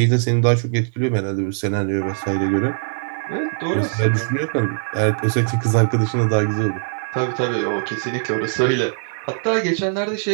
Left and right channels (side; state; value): left; silent; digital silence